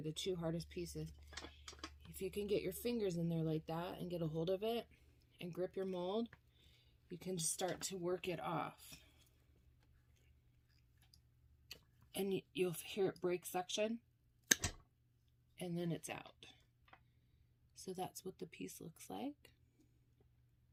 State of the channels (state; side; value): identical; both; correlation 1.00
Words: the two hardest pieces. If you can get your fingers in there like that and get a hold of it and grip your mold, you can just start to work it off. And you'll hear it break suction, and then it's out. So that's what the piece looks like.